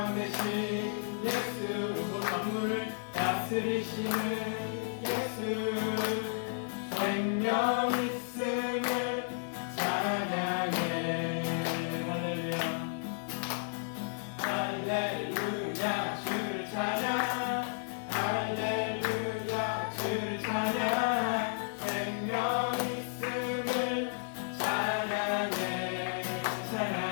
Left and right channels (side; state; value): right; silent; 56 dB below the other